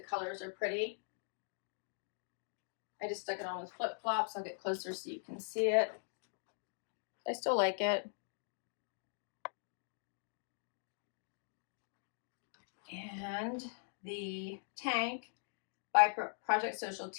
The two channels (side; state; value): right; silent; digital silence